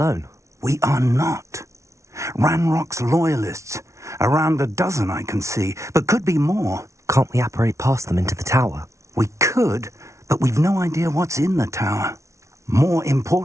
We are not. Ranrock's loyalists. Around a dozen I can see, but could be more. Can't we apparate past them into the tower? We could, but we've no idea what's in the tower. More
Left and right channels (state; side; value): late; left; 0.14 ms